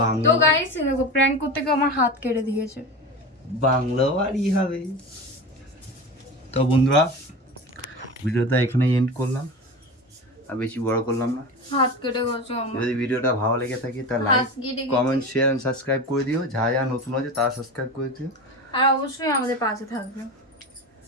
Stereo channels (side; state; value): both; normal; correlation 0.28